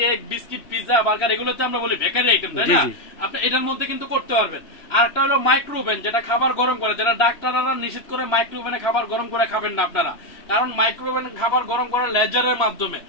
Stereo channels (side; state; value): right; late; 3.0 ms